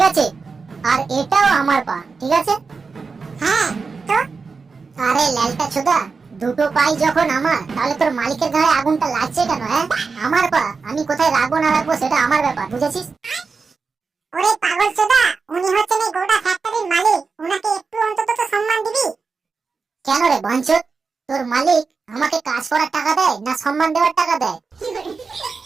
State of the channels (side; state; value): left; quieter; 4.7 dB